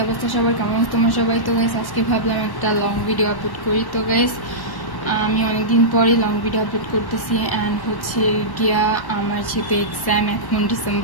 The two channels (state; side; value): late; right; 1.1 ms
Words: অবস্থা সবার, কেমন আছো তোমরা সবাই? তো গাইস আজকে ভাবলাম একটা লং ভিডিও আপলোড করি। তো গাইস আমি অনেকদিন পরে লং ভিডিও আপলোড করতেছি অ্যান্ড হচ্ছে গিয়া আমার যেহেতু এক্সাম, এখন